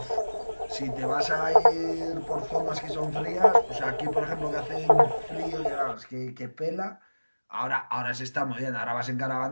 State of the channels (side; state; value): both; inverted; correlation -1.00